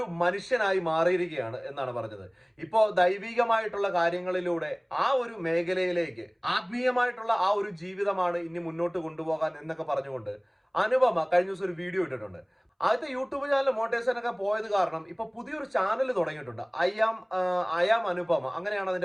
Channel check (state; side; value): identical; both; correlation 1.00